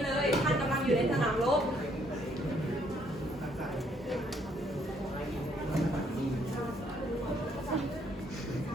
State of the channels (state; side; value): normal; both; correlation 0.68